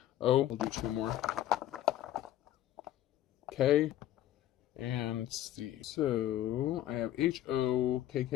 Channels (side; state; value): right; quieter; 13.1 dB